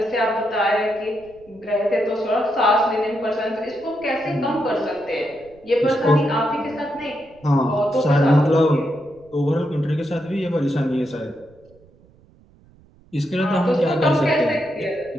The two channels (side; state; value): right; noise; rumble, 28 dB below the sound